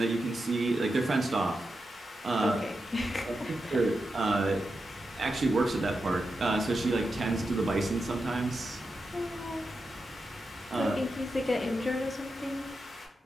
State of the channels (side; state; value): both; normal; correlation 0.88